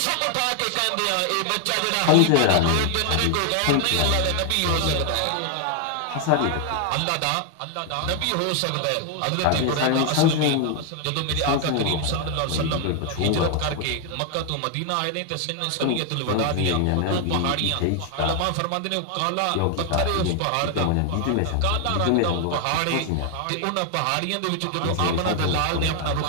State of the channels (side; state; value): both; different; correlation 0.00